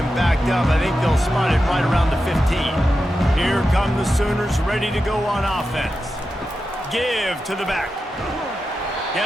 backed up. I think they'll spot it right around the 15. Here come the Sooners ready to go on offense. Give to the back.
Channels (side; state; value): both; normal; correlation 0.90